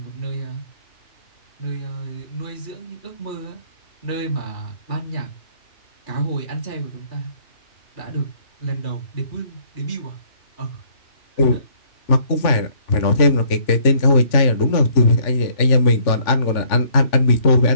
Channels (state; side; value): late; right; 3.4 ms